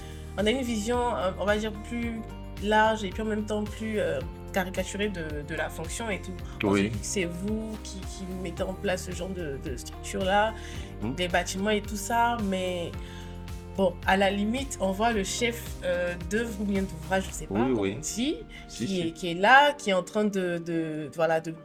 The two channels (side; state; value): both; identical; correlation 1.00